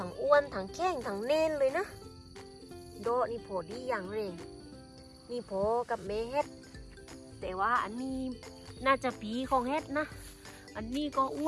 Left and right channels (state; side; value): identical; both; correlation 1.00